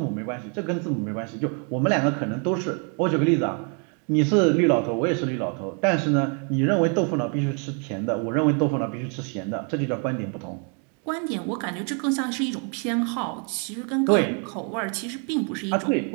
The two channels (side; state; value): left; quieter; 39.5 dB